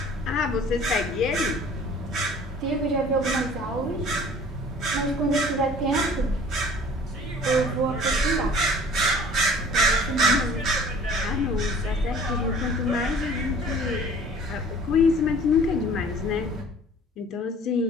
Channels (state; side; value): normal; both; correlation 0.49